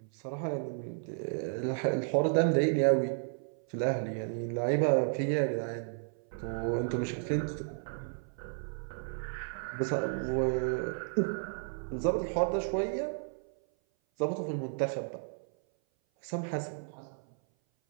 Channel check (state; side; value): silent; left; 56 dB below the other